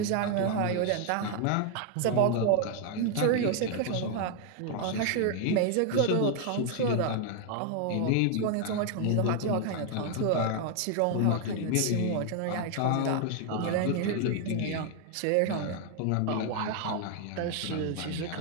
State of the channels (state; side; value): different; both; correlation 0.00